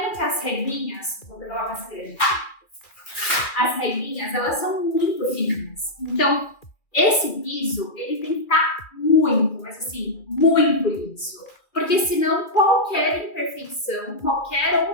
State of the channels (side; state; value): right; late; 2.0 ms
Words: que as regrinhas, vou pegar uma mais grande. As regrinhas, elas são muito fininhas. Então, esse piso, ele tem que estar muito, mas assim, muito liso. Porque senão qualquer imperfeição,